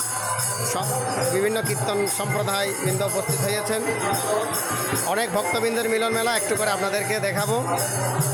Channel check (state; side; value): identical; both; correlation 1.00